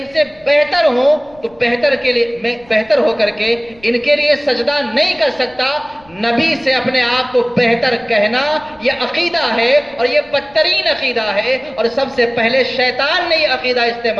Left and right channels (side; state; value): left; noise; rumble, 27 dB below the sound